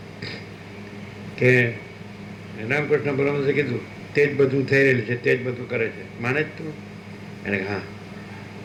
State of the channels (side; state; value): both; identical; correlation 1.00